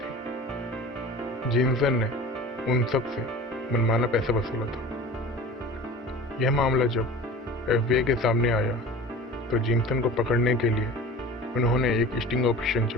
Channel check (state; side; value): normal; both; correlation 0.38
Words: जीनसन ने उन सब से मनमाना पैसा वसूला था। यह मामला जब एफबीआई के सामने आया, तो जीनसन को पकड़ने के लिए उन्होंने एक स्टिंग ऑपरेशन